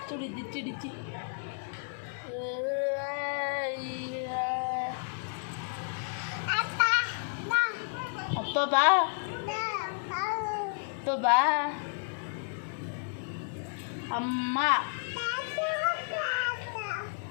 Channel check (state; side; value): silent; right; digital silence